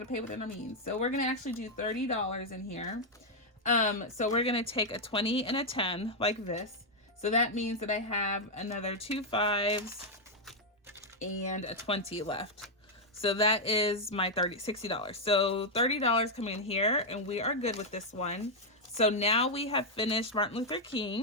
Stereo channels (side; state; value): both; normal; correlation -0.01